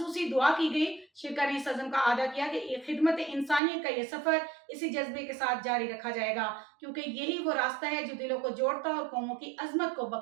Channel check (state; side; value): drops out; left; at 3.6 s